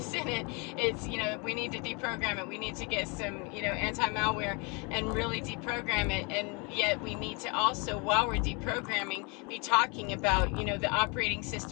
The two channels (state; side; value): quieter; right; 31.3 dB